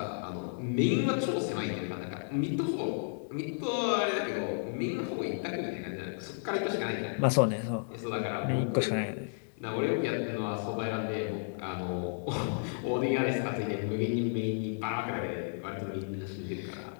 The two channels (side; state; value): right; silent; 56 dB below the other